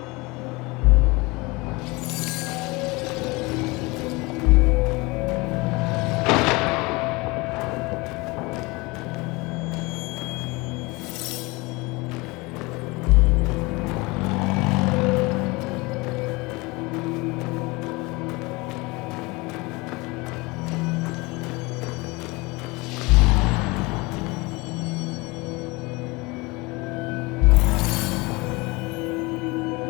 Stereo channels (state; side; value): quieter; right; 24.5 dB